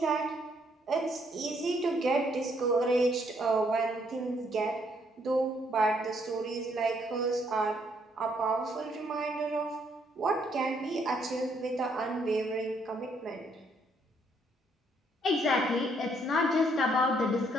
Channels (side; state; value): both; normal; correlation 0.70